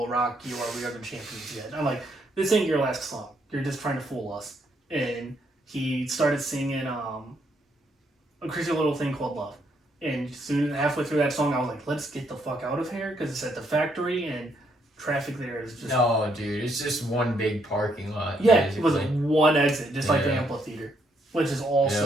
Rock You or We Are the Champions yet. I'm like, this ain't your last song. You're just trying to fool us. And he started singing a crazy little thing called Love. And soon, halfway through that song, I was like, let's get the fuck out of here because it's at the factory and traffic there is just... No, dude, it's just one big parking lot. Yeah, basically. it was like one exit, just like the amphitheater, which is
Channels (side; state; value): both; normal; correlation 0.73